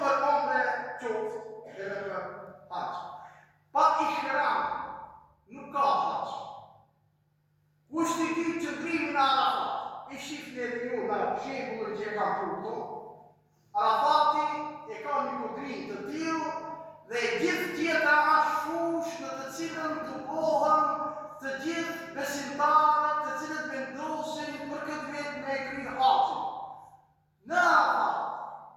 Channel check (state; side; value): identical; both; correlation 1.00